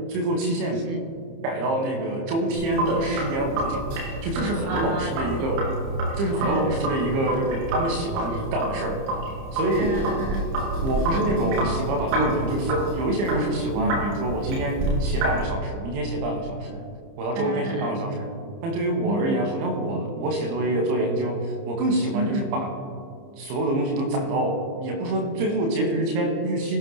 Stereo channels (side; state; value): left; late; 30 ms